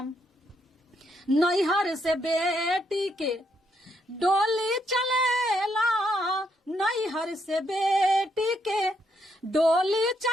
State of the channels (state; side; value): normal; both; correlation 0.76